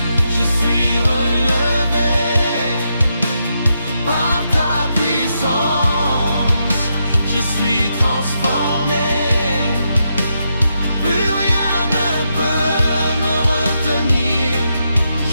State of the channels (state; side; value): inverted; both; correlation -0.82